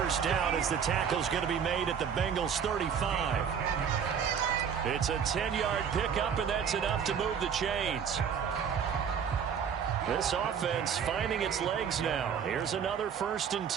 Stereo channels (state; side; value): quieter; left; 7.4 dB